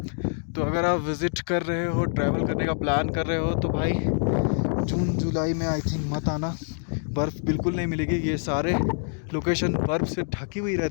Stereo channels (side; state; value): right; silent; 61 dB below the other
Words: तो अगर आप विज़िट कर रहे हो, ट्रैवल करने का प्लान कर रहे हो, तो भाई जून जुलाई में आई थिंक मत आना, बर्फ़ बिल्कुल नहीं मिलेगी। ये सारे लोकेशन बर्फ़ से ढकी हुई